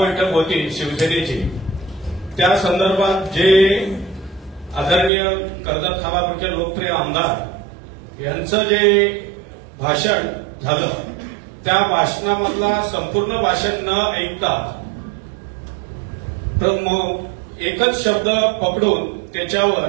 होती शिवसेनेची, त्या संदर्भात जे आदरणीय कर्जत खालापूरचे लोकप्रिय आमदार यांचं जे भाषण झालं, त्या भाषणामधला संपूर्ण भाषण न ऐकता एकच शब्द पकडून त्याच्यावर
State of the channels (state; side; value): drops out; left; at 5.1 s